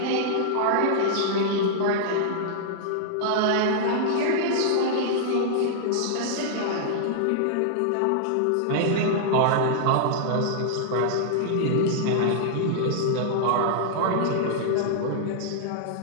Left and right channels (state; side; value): different; both; correlation -0.01